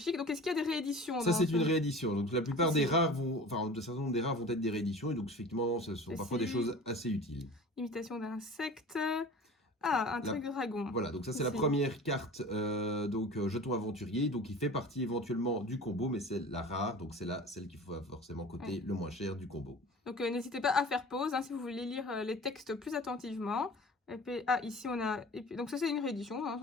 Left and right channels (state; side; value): normal; both; correlation 0.40